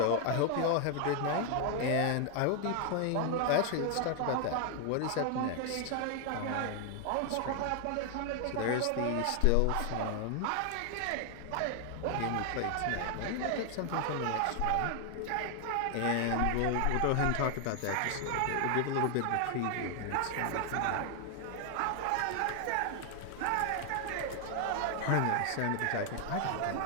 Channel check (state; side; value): different; both; correlation 0.00